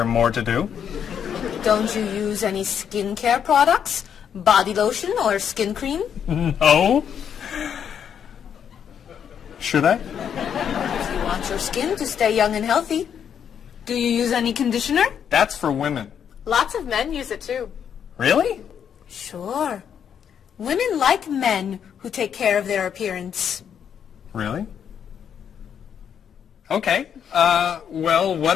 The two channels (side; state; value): right; quieter; 8.2 dB